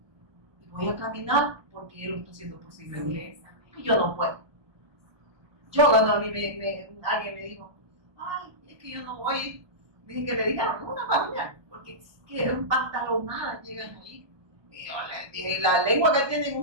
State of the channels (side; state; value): left; late; 1.2 ms